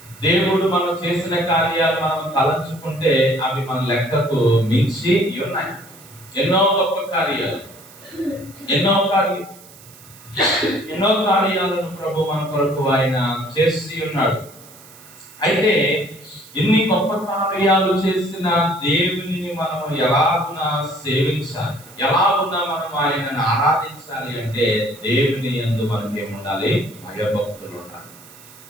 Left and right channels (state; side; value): noise; right; hiss, 22 dB below the sound